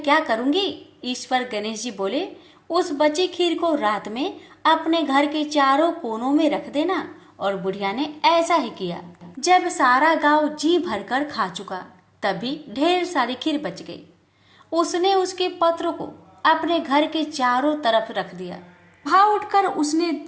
क्या करूंगी? इस पर गणेश जी बोले, उस बची खीर को रात में अपने घर के चारों कोनों में रख देना। और बुढ़िया ने ऐसा ही किया। जब सारा गांव जी भरकर खा चुका तभी ढेर सारी खीर बच गई। उसने उसके पत्र को अपने घर के चारों तरफ रख दिया। वहां उठकर उसने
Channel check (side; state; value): both; identical; correlation 1.00